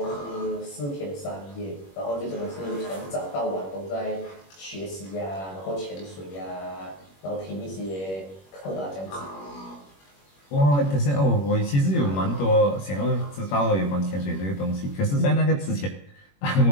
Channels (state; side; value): late; right; 21 ms